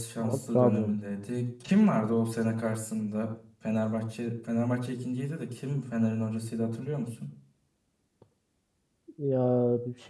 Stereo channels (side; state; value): both; identical; correlation 1.00